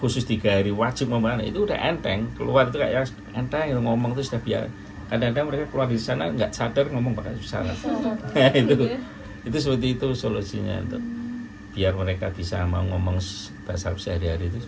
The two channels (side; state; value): both; identical; correlation 1.00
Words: 3 hari wajib ngomong, itu udah enteng, keluar itu kayak enteng ngomong itu sudah biasa. Kadang-kadang mereka keluar di sana nggak sadar ngomong pakai bahasa Arab. Itu seperti itu solusinya untuk biar mereka bisa mau ngomong bahasa Arab sehari-hari itu